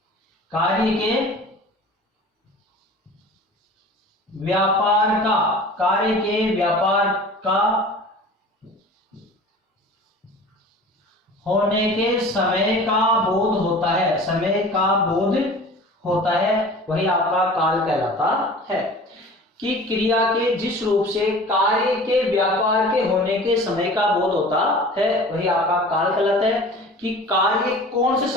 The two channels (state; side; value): normal; both; correlation 0.41